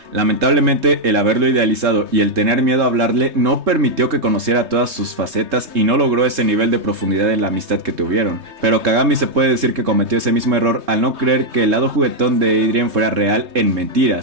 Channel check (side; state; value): left; late; 3.2 ms